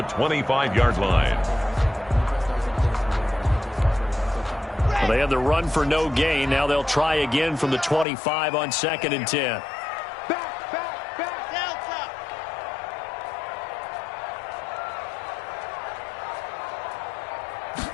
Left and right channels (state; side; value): drops out; right; at 8.1 s